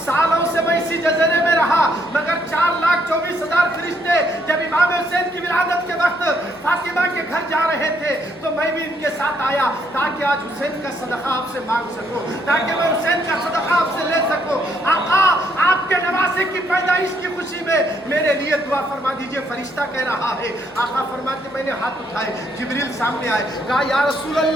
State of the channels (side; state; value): both; normal; correlation 0.71